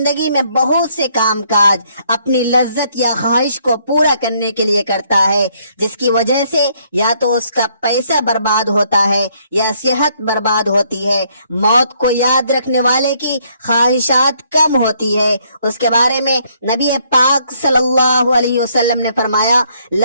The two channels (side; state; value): both; inverted; correlation -0.68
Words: میں بہت سے کام کاج اپنی لذت یا خواہش کو پورا کرنے کے لیے کرتا ہے، جس کی وجہ سے یا تو اس کا پیسہ برباد ہوتا ہے یا صحت برباد ہوتی ہے. موت کو یاد رکھنے والے کی خواہشات کم ہوتی ہے. اس کے بارے میں نبی پاک صلی اللہ علیہ وسلم نے فرمایا